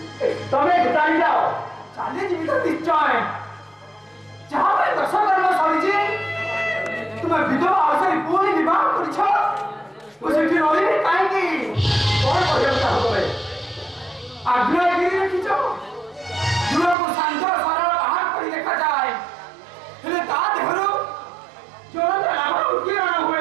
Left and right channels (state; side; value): drops out; left; at 16.9 s